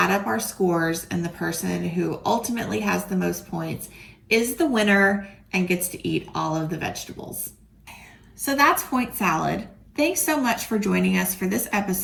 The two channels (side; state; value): both; identical; correlation 1.00